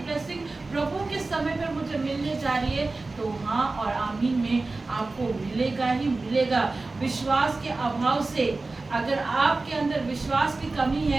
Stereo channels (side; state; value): left; quieter; 3.5 dB